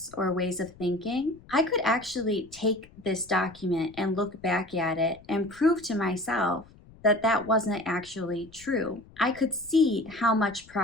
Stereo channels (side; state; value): left; noise; rumble, 23 dB below the sound